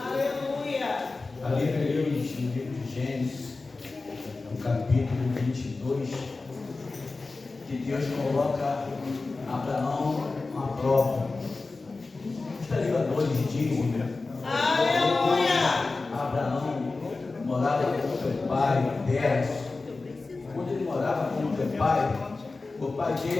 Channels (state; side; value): quieter; right; 3.7 dB